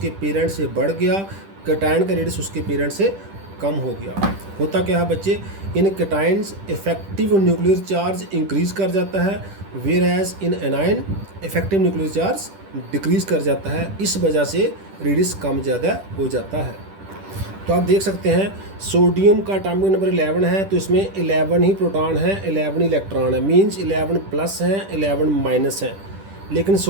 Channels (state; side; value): late; left; 10 ms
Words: पेरेंट से बढ़ गया, कैटायन का रेडियस उसके पेरेंट से कम हो गया। होता क्या है बच्चे, in cations effective nuclear charge increase कर जाता है, whereas in anion effective nuclear charge decrease कर जाता है। इस वजह से रेडियस कम ज़्यादा हो जाता है। तो आप देख सकते हैं सोडियम का एटॉमिक नंबर 11 है, तो इसमें 11 ही प्रोटॉन हैं, 11 इलेक्ट्रॉन है, मींस 11 प्लस हैं, 11 माइनस हैं। लेकिन